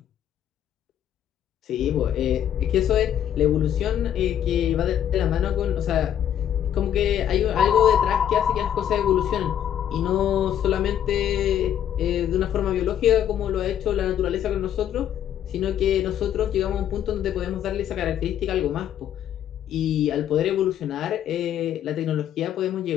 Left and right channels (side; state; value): right; quieter; 10.2 dB